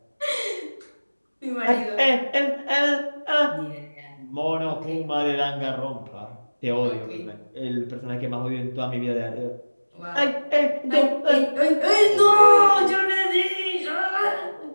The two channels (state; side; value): inverted; both; correlation -1.00